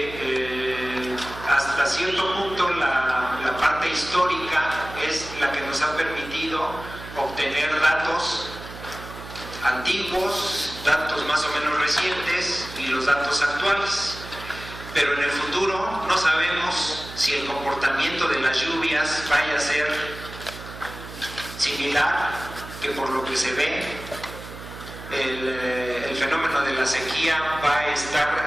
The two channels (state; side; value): noise; right; hum, 13 dB below the sound